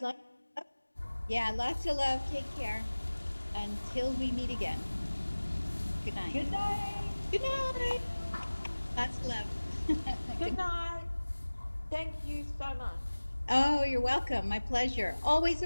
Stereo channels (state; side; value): inverted; both; correlation -1.00